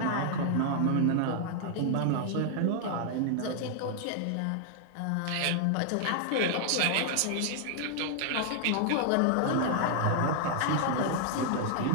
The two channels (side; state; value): both; different; correlation -0.01